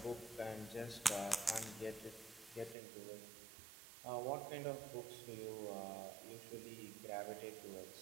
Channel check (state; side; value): drops out; left; at 2.8 s